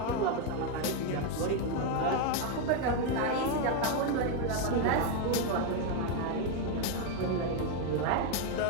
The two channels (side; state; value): both; different; correlation 0.01